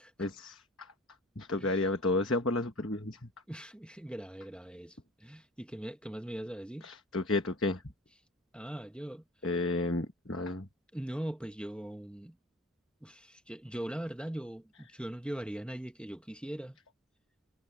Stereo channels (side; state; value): both; normal; correlation 0.42